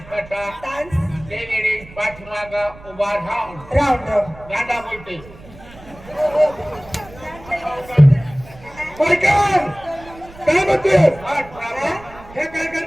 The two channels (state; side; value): noise; right; rumble, 20 dB below the sound